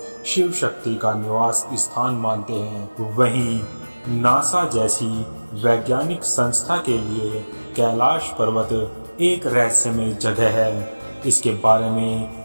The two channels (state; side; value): inverted; both; correlation -1.00